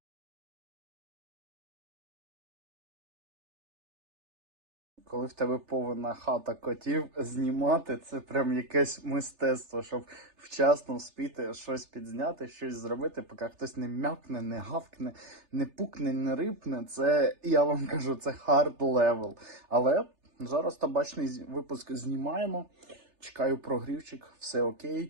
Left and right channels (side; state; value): left; late; 3.3 ms